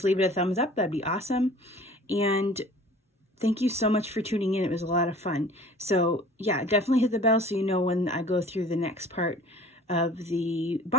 leave it a thumbs up, that'd be awesome. And thank you so much for tuning in. It was a lot of fun. So yeah, definitely hit the bell so you know when I go through the next part of the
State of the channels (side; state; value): both; normal; correlation 0.47